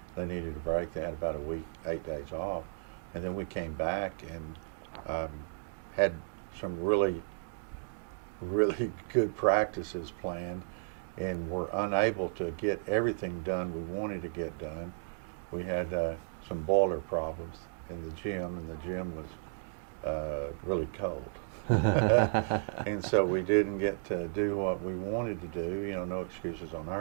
They needed a break. They had about a week, 8 days off. And then we came back and had some really, really good practices planned, and were unable to get everything done we wanted to get done. We had some boiler problems in the gym, and the gym was really cold. And so we didn't get to do what we wanted to do. You know, no excuses on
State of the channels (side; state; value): left; silent; digital silence